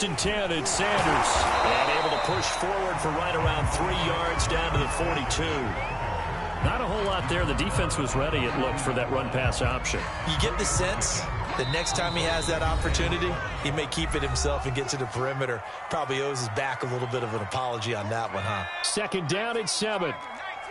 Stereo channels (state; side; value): identical; both; correlation 1.00